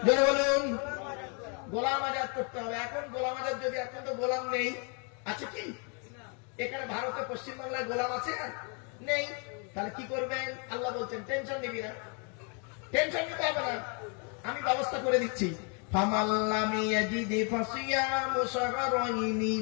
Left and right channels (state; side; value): quieter; right; 37.5 dB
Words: জোরে বলুন, গোলাম আজাদ করতে হবে। এখন গোলাম আজাদ যদি, এখন তো গোলাম নেই, আছে কি এখানে ভারতে পশ্চিমবাংলায় গোলাম আছে? নেই। তাহলে কি করবেন? আল্লাহ বলছেন টেনশন নিবি না, টেনশন নিতে হবে না, আমি ব্যবস্থা করে দিচ্ছি। ফামাল্লামি ইয়াজিদি ফাসিয়ামু শাহরাইনি